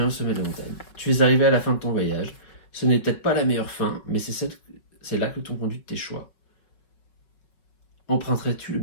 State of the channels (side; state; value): right; late; 5.4 ms